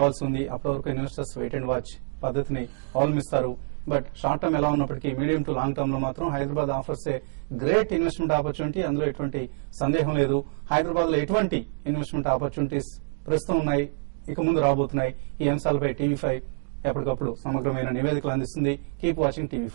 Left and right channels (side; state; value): left; silent; digital silence